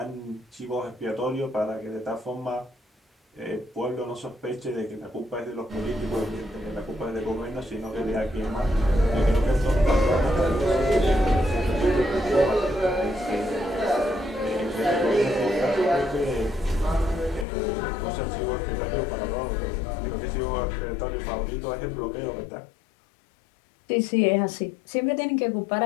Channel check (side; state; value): right; drops out; at 17.4 s